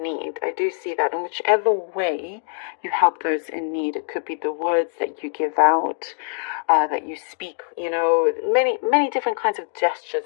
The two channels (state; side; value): silent; right; digital silence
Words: need. I do see that in whichever way you help those in need. It could be the words that you give out, that you speak, you know, many different kinds of gestures